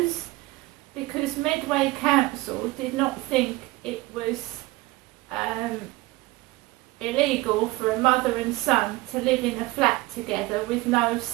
because Medway Council did not think it was illegal for a mother and son to live in a flat together with no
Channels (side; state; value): left; quieter; 20.0 dB